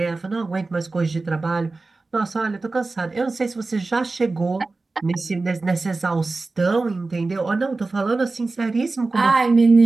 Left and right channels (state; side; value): quieter; left; 3.5 dB